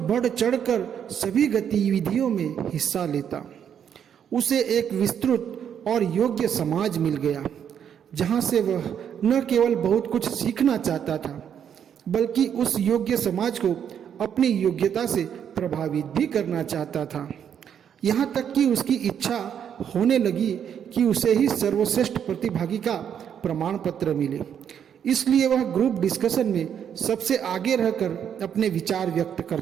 बढ़ चढ़कर सभी गतिविधियों में हिस्सा लेता। उसे एक विस्तृत और योग्य समाज मिल गया, जहाँ से वह न केवल बहुत कुछ सीखना चाहता था, बल्कि उस योग्य समाज को अपनी योग्यता से प्रभावित भी करना चाहता था। यहाँ तक कि उसकी इच्छा होने लगी कि उसे ही सर्वश्रेष्ठ प्रतिभागी का प्रमाण पत्र मिले। इसलिए वह ग्रुप डिस्कशन में सबसे आगे रहकर अपने विचार व्यक्त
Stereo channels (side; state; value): left; quieter; 8.6 dB